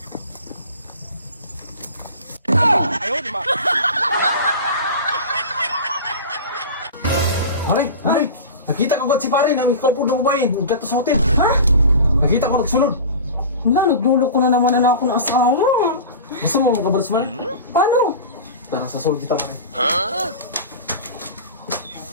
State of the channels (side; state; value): both; inverted; correlation -0.33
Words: Pare, nakita ko si pare na may kaupo na babae. Nagkato sa hotel. Ha? Nakita ko nagsunod. Wala, nagdulog ko na naman na ako ng asawa. Gusto mo makabalas man? Paano? Tara, sasulod kita pare.